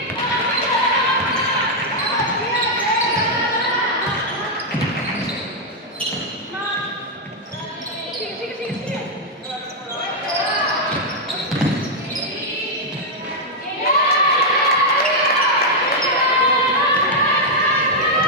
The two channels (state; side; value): normal; both; correlation -0.02